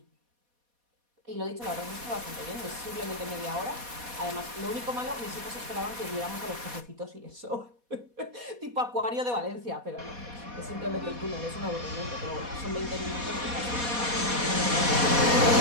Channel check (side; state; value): left; late; 4.2 ms